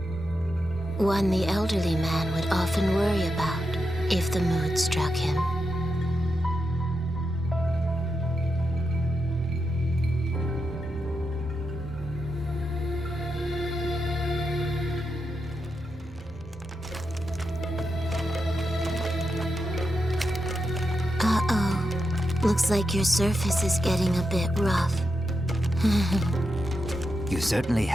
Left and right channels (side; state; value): both; normal; correlation 0.86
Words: One the elderly man would often worry about if the mood struck him. Uh-oh. Looks like your surface is getting a bit rough. You certainly